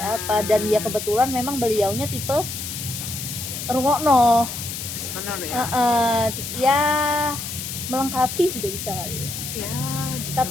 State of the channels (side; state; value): left; noise; hiss, 6 dB below the sound